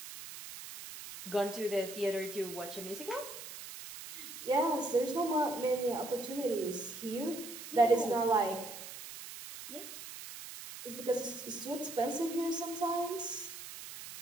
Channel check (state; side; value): noise; right; hiss, 11 dB below the sound